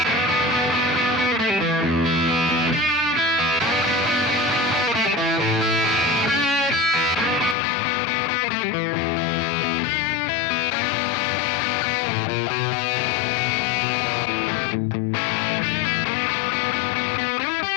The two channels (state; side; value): drops out; right; at 7.6 s